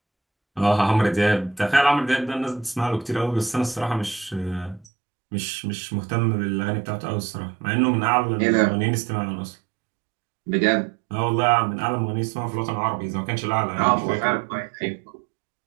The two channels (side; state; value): left; drops out; at 4.9 s